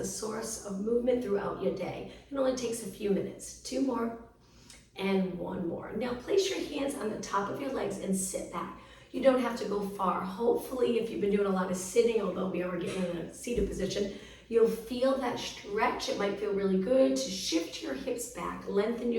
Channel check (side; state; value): both; identical; correlation 1.00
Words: source of movement throughout your day. It only takes a few minutes. 2 more and 1 more. Now place your hands on the top of your legs and sit back. You don't have to go far. Hopefully, if you've been doing a lot of sitting, although we are getting in a seated position, you'll feel that stretch. It might feel really good to shift your hips back, lengthen